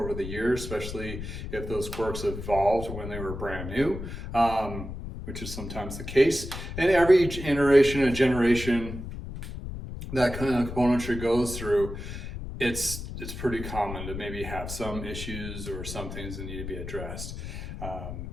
the years, especially if those quirks evolved when they were brand new. Which is sometimes the case. And every iteration and generation that kind of componentry goes through, it's pretty common to maybe have some issues or some things that need to be addressed.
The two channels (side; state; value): left; noise; rumble, 8 dB below the sound